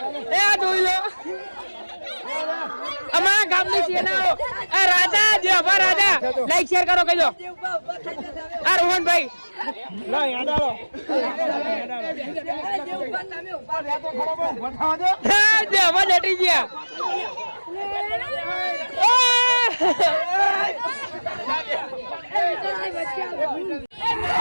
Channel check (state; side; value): inverted; both; correlation -1.00